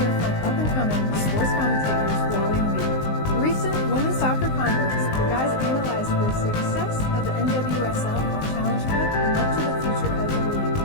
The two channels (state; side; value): late; right; 19 ms